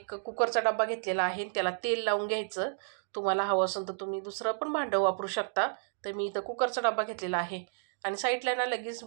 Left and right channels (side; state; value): left; silent; digital silence